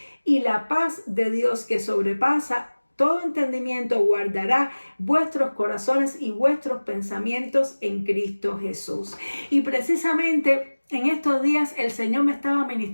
y la paz de Dios, que sobrepasa todo entendimiento, guardará vuestros corazones y vuestros pensamientos en Cristo Jesús. Y precisamente en estos días el Señor me estaba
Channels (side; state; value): both; inverted; correlation -1.00